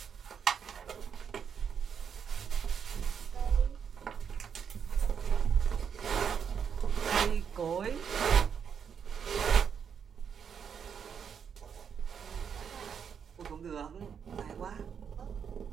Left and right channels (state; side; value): quieter; left; 7.3 dB